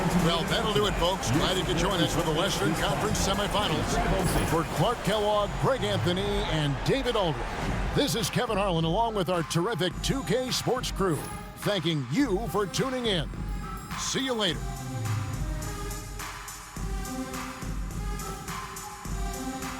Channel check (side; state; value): both; identical; correlation 1.00